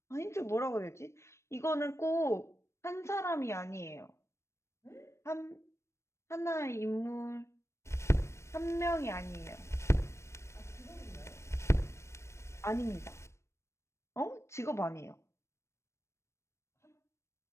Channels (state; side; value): late; right; 0.13 ms